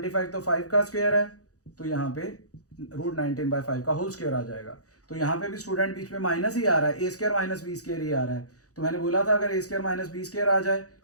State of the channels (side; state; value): right; late; 0.66 ms